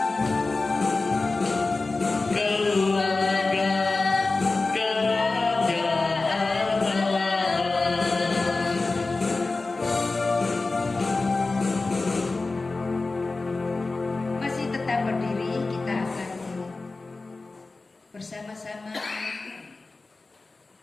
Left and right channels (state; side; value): quieter; right; 3.6 dB